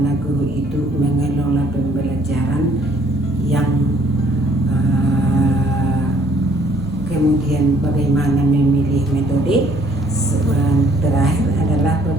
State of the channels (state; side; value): normal; both; correlation 0.62